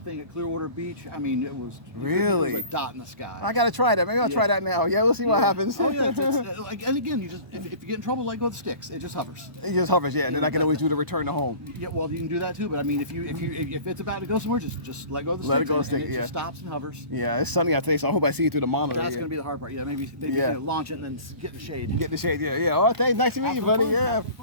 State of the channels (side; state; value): left; late; 1.0 ms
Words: thing at Clearwater Beach. I mean, it was really it was a dot in the sky. I gotta try that. Maybe I'll try that now. Yeah, we'll see what happens. Oh yeah, it's like, and again, you just if you get in trouble, let go of the sticks. It just hovers. It just hovers, yeah. And then I can always do the return to home. Yeah, well, you can do that too. But I mean, if it's about to go somewhere, just let go of the sticks. Let it go of the stick. It just stops and hovers. Yeah, it's sunny out today, so I hope I see you through the monitor. That's gonna be the hard part. Yeah, maybe launch it and then get the shade. Get the shade. Yeah, yeah. Oh, thanks. Nice to meet you, buddy. Yeah,